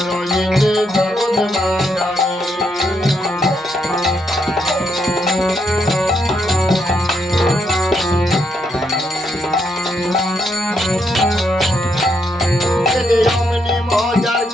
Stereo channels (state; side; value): normal; both; correlation 0.77